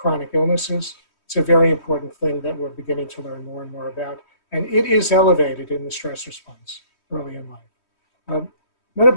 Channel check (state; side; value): late; right; 3.1 ms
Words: illnesses. It's a very important thing that we're beginning to learn more and more about. And it is elevated in the stress response early in life.